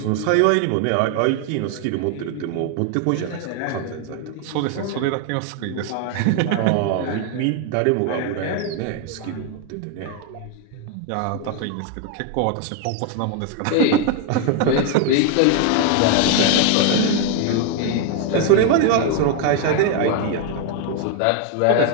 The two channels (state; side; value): different; both; correlation 0.01